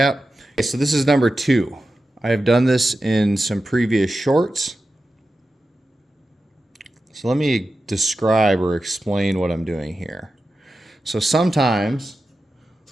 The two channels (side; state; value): both; normal; correlation 0.92